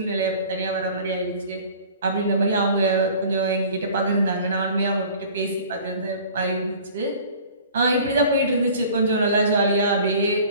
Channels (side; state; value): both; inverted; correlation -0.46